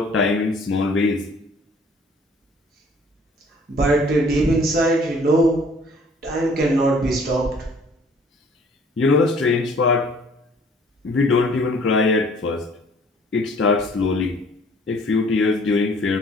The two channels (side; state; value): both; normal; correlation 0.56